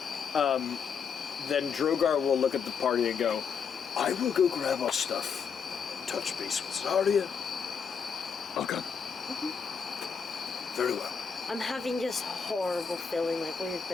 Then Drogar will look at the party and go, I will go grab our stuff. Touch base with Zarya. Okay. Mm-hmm. Very well. I'm having this horrible feeling like we have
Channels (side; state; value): right; quieter; 6.3 dB